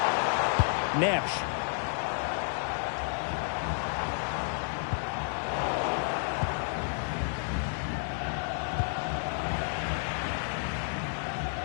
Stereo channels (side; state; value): right; silent; 57 dB below the other